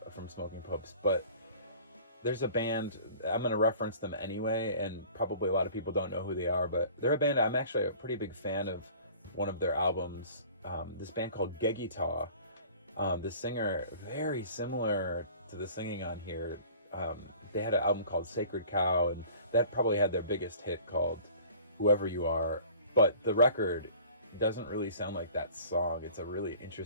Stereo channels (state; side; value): inverted; both; correlation -0.47